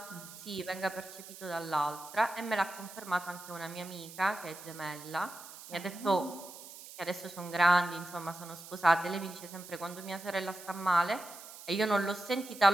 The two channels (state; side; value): noise; right; hiss, 15 dB below the sound